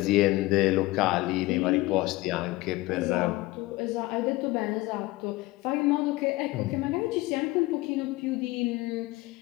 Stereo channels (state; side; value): quieter; right; 19.7 dB